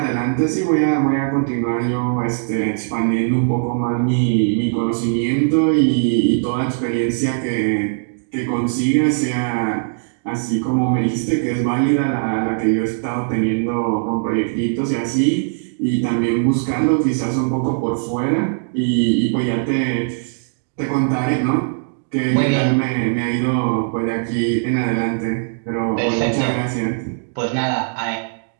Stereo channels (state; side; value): silent; left; digital silence